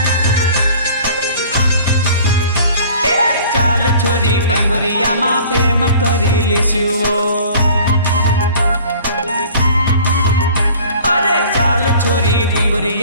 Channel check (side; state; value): both; inverted; correlation -0.47